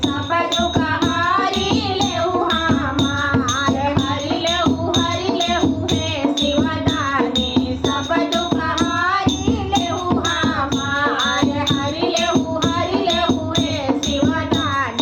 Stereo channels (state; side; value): identical; both; correlation 1.00